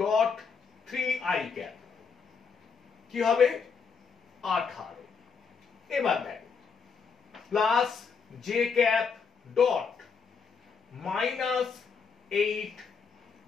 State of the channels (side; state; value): right; quieter; 5.7 dB